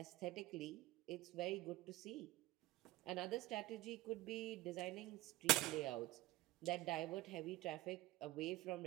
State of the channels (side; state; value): left; quieter; 17.7 dB